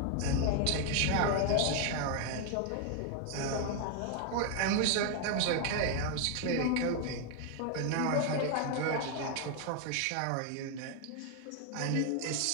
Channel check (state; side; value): different; both; correlation 0.01